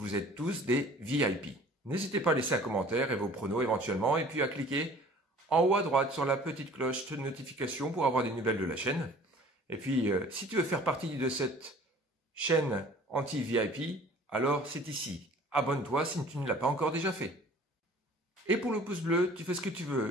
êtes tous des VIP. N'hésitez pas à laisser un commentaire et vos pronos éventuellement, et puis à cliquer en haut à droite sur la petite cloche de notification pour avoir des nouvelles de la chaîne. Et puis, si tu veux faire partie de cette chaîne anti-VIP, alors c'est ici. Abonne-toi si tu ne l'as pas encore déjà fait. Et pour le pouce bleu, tu fais ce que tu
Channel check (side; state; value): both; normal; correlation 0.49